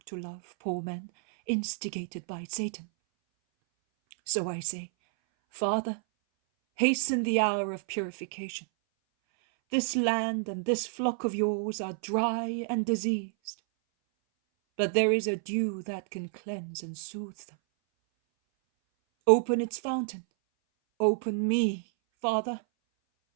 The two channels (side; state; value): left; silent; 58 dB below the other